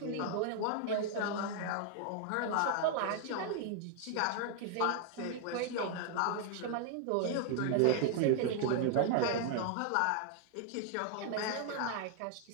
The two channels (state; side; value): different; both; correlation 0.00